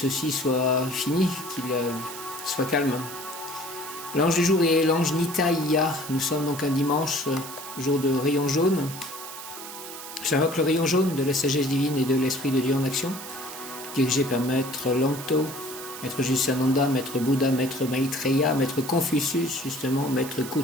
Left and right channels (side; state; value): right; noise; hiss, 11 dB below the sound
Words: soit fini, qu'il soit calme. L'ange du jour est l'ange Nitaïa. Nous sommes donc un dimanche, jour de rayon jaune. J'invoque le rayon jaune de la sagesse divine et de l'Esprit de Dieu en action, dirigé par Maître Lanto, Maître Jusananda, Maître Bouddha, Maître Maitreya, Maître Confucius, justement, Maître